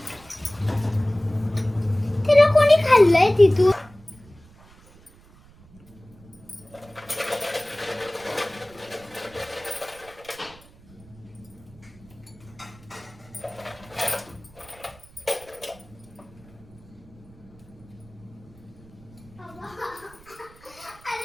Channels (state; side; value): noise; right; rumble, 24 dB below the sound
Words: तिला कोणी खाल्लंय तिथून?